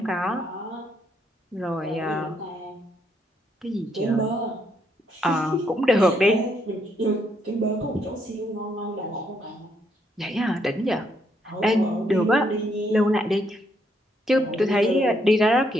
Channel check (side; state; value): both; normal; correlation 0.74